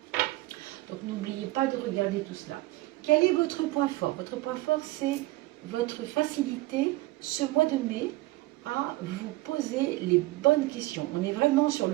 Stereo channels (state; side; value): quieter; left; 19.4 dB